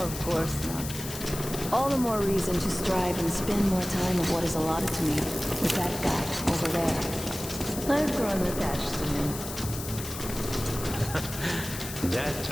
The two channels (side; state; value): left; noise; hiss, 9 dB below the sound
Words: course not. All the more reason to strive and spend more time of what is allotted to me with that guy over there. I've grown attached to him. That